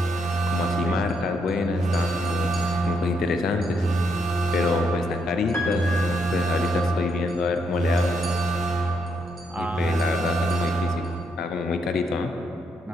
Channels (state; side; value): normal; both; correlation 0.76